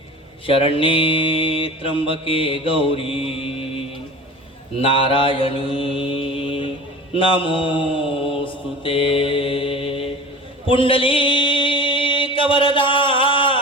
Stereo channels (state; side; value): normal; both; correlation 0.37